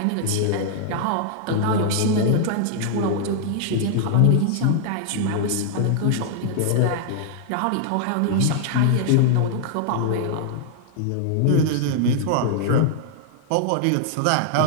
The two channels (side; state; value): both; different; correlation 0.00